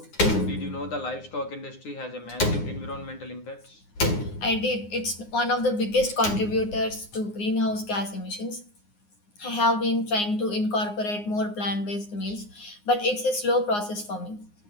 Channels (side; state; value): right; late; 9.7 ms